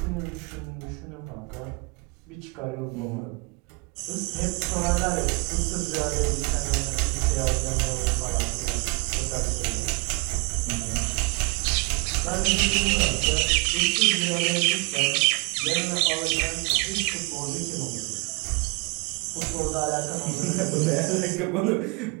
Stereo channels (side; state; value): left; quieter; 29.4 dB